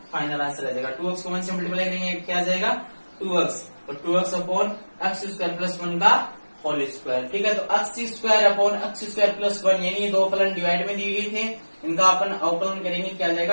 फाइनल आंसर आ जाएगा। 2x को 1 से मल्टीप्लाई करेंगे क्या आ जाएगा 2x, तो 2x upon x square plus 1 का होल स्क्वायर। ठीक है, तो x square upon x square plus 1 यानी ये दो फलन डिवाइड में दिए गए थे, इनका अपन अवकलन करेंगे क्या आ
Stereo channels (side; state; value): both; inverted; correlation -1.00